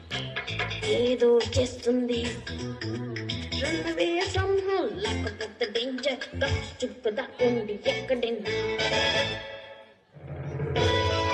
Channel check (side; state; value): both; identical; correlation 1.00